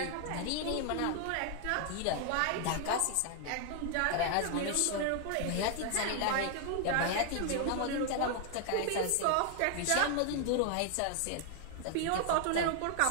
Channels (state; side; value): different; both; correlation 0.00